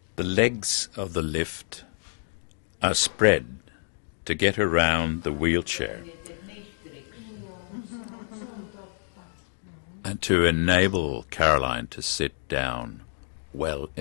The legs of the lift are spread to get around the wheelchair and to enable Caroline to sit down well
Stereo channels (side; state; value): right; silent; digital silence